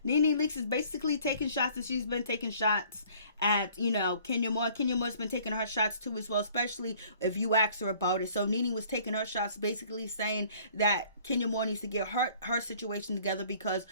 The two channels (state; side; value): inverted; both; correlation -0.55